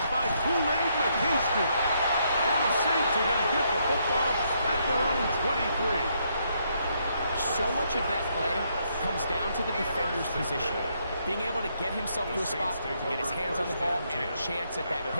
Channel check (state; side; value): inverted; both; correlation -0.75